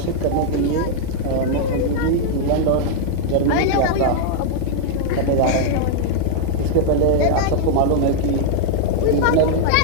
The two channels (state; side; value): different; both; correlation -0.01